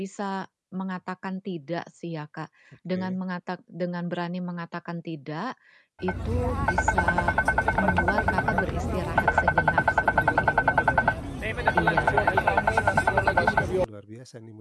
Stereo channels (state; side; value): identical; both; correlation 1.00